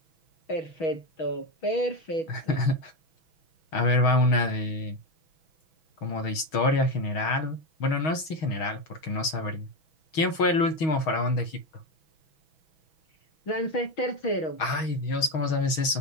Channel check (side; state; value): right; late; 6.3 ms